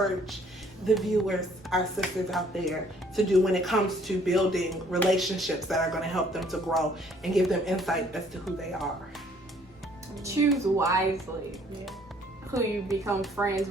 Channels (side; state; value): both; normal; correlation 0.61